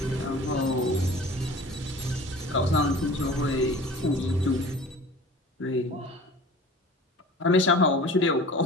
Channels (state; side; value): normal; both; correlation 0.42